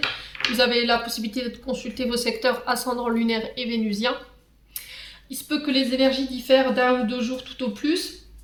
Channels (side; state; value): both; identical; correlation 1.00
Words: Vous avez la possibilité de consulter vos secteurs ascendant lunaire et vénusien. Il se peut que les énergies diffèrent d'un ou deux jours tout au plus.